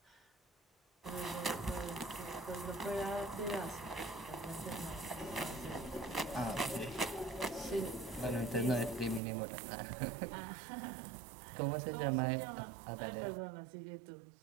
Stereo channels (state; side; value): drops out; left; at 9.2 s